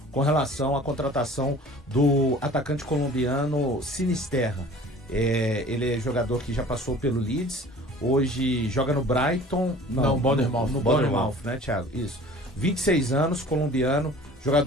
com relação à contratação do atacante colombiano Sinisterra. Ele é jogador que já passou pelo Leeds, hoje joga no Brighton, Não, Bournemouth. no Bournemouth, né, Thiago? Isso. 26 anos, colombiano,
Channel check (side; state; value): both; normal; correlation 0.46